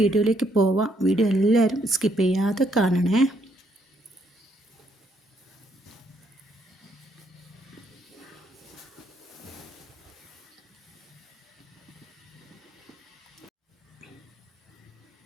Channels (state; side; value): normal; both; correlation 0.72